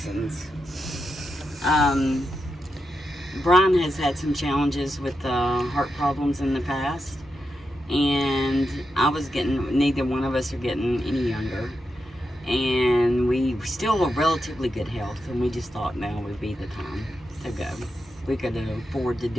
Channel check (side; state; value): both; normal; correlation 0.87